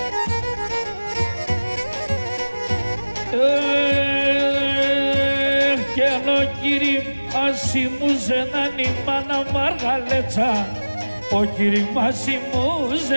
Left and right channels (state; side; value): inverted; both; correlation -1.00